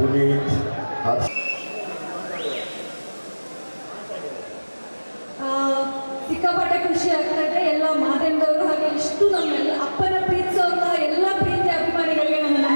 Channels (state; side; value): inverted; both; correlation -1.00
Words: ಹರ್ಷ ಸಿಕ್ಕಾಪಟ್ಟೆ ಖುಷಿ ಆಗ್ತಾ ಇದೆ. ಎಲ್ಲ ಮಾಧ್ಯಮದವರು ಹಾಗೆ ಇಷ್ಟು ನಮ್ಮೆಲ್ಲ ಅಪ್ಪನ ಪ್ರೀತಿಸುವಂತಹ ಎಲ್ಲ ಪ್ರೀತಿ ಅಭಿಮಾನಿಗಳಿಗೆ ನನ್ನ